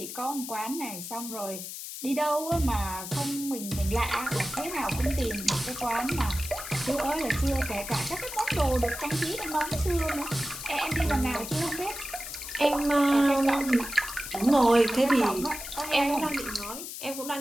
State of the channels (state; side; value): noise; left; hiss, 9 dB below the sound